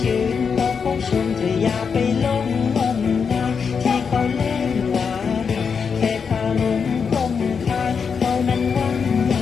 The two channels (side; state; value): right; quieter; 6.0 dB